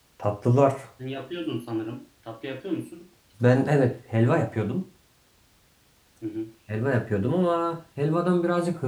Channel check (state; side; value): identical; both; correlation 1.00